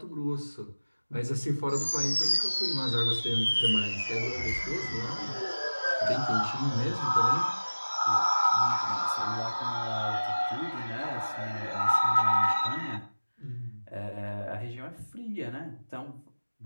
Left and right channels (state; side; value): inverted; both; correlation -1.00